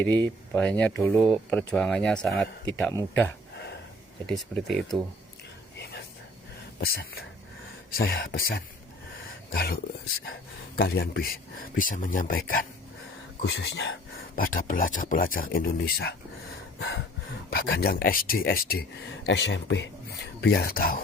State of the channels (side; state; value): both; normal; correlation 0.52